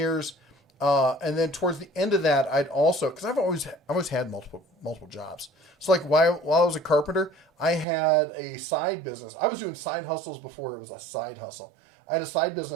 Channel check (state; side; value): drops out; left; at 7.9 s